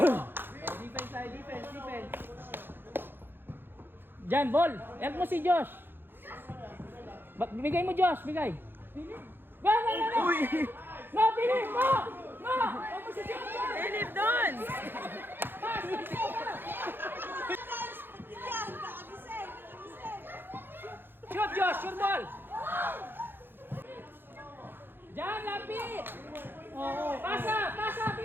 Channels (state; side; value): late; left; 0.10 ms